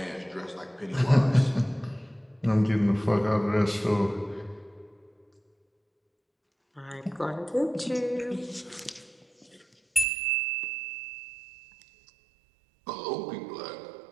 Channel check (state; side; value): drops out; left; at 10.1 s